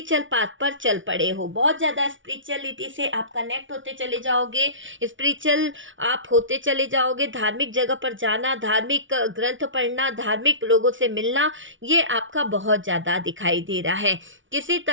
पाथ पर चल पड़े हो, बहुत ज़्यादा स्पिरिचुअलिटी से आप कनेक्ट होते चले जाओगे, स्पिरिचुअल आप होते चले जाओगे। धार्मिक जगह पर जाना, धार्मिक ग्रंथ पढ़ना, धार्मिक लोगों से मिलना, ये आपका बहुत ज़्यादा दिखाई दे रहा है। किसी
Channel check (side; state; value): left; late; 0.56 ms